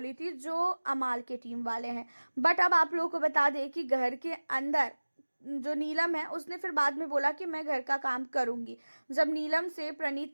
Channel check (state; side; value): inverted; both; correlation -1.00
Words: थी जो अमाल के टीम वाले हैं। बट अब आप लोगों को बता दें कि घर के अंदर जो नीलम है उसने फिर बाद में बोला कि मैं घर का काम करूंगी। जब नीलम से